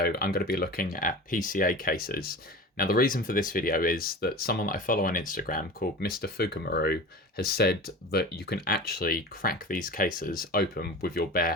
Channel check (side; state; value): both; normal; correlation 0.34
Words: I'm going to be looking at PCA cases. Now the reason for this video is that someone that I follow on Instagram called Mr. Fukumaru has said that you can actually crack these cases open with your bare